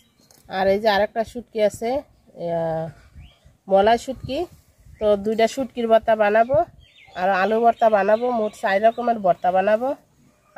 আর এই যে আরেকটা শুটকি আছে মলাই শুটকি। তো 2টা শুটকির ভর্তা বানাবো আর আলু ভর্তা বানাবো, মোট 4 রকমের ভর্তা বানাবো।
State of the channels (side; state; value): both; identical; correlation 1.00